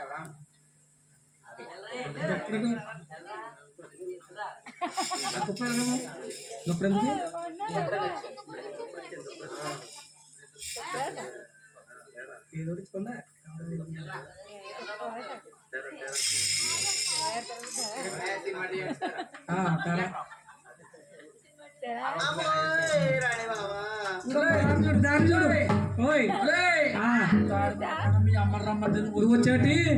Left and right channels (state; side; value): identical; both; correlation 1.00